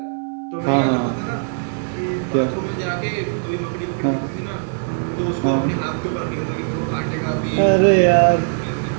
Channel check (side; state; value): left; silent; digital silence